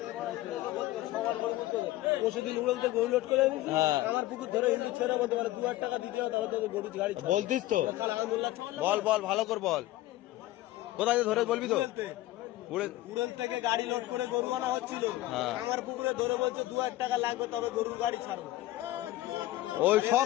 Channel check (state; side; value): quieter; right; 16.3 dB